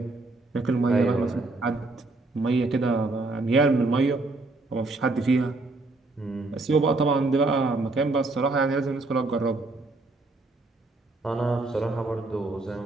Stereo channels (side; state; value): left; quieter; 3.2 dB